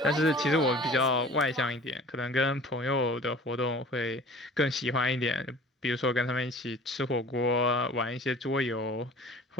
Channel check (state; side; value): normal; both; correlation 0.45